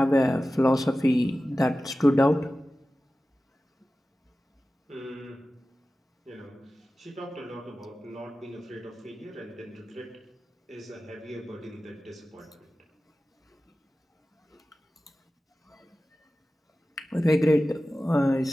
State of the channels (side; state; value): both; normal; correlation 0.95